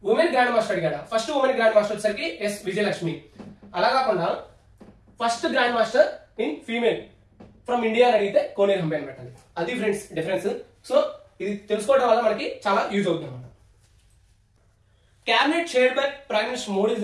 ఉమెన్ గ్రాండ్ మాస్టర్ అడిగాడా? ఫస్ట్ ఉమెన్ గ్రాండ్ మాస్టర్ వచ్చేసరికి ఎస్ విజయలక్ష్మి. అలా కాకుండా first grandmaster in female from India అని అడిగితే కోనేరు హంపి అని పెట్టాలి. అది ఫ్రెండ్స్ డిఫరెన్స్. సో ఇది తెలుసుకోవడం వల్ల మనకి చాలా యూజ్ అవుతుంది అనమాట. Cabinet chaired by Prime Minister Modi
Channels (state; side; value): identical; both; correlation 1.00